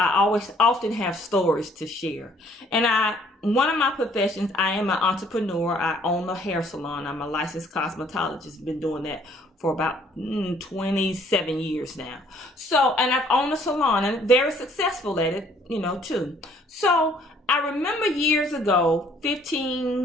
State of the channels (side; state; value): both; normal; correlation 0.61